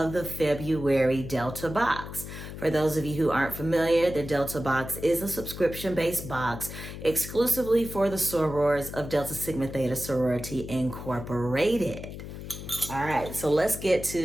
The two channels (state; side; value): noise; left; hum, 10 dB below the sound